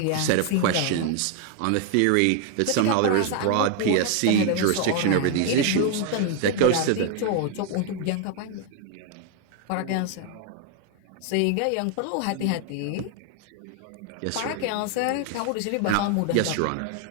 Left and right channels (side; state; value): both; different; correlation 0.01